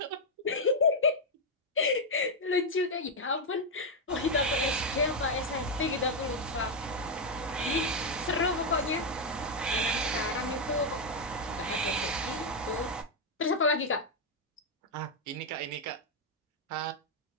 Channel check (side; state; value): both; normal; correlation 0.01